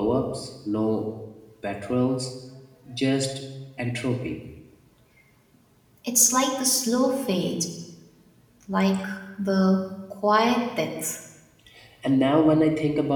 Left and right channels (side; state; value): both; identical; correlation 1.00